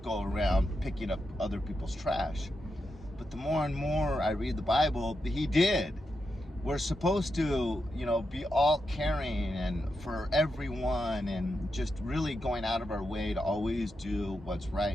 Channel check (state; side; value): normal; both; correlation 0.86